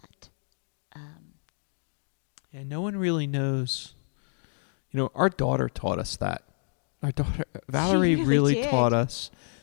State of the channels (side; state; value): right; silent; digital silence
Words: Yeah, no one really knows. Our daughter taught us that. Our daughter, Valerie, really did. taught us